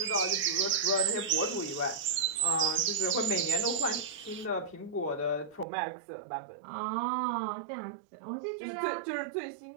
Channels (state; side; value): drops out; left; at 5.7 s